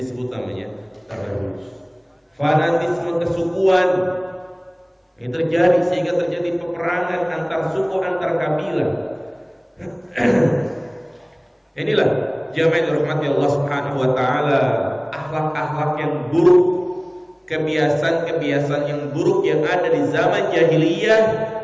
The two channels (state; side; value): identical; both; correlation 1.00